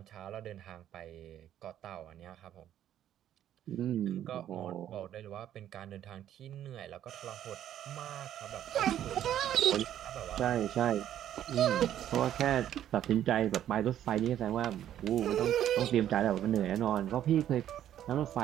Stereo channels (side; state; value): left; quieter; 11.1 dB